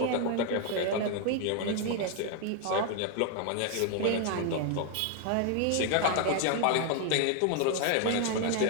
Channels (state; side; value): different; both; correlation 0.01